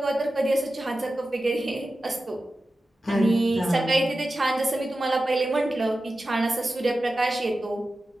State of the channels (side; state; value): both; normal; correlation 0.93